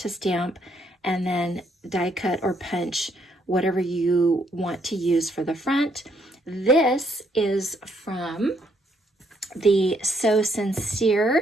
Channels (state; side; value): normal; both; correlation 0.71